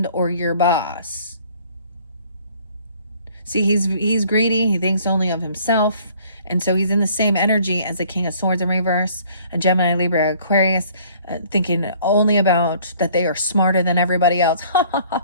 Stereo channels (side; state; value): both; inverted; correlation -0.56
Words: or your boss. See, he's greedy. He thinks only of himself. And so he's in the same energy as the King of Swords in reverse, a Gemini, Libra, Aquarius, thinking only about that they are smarter than everybody else.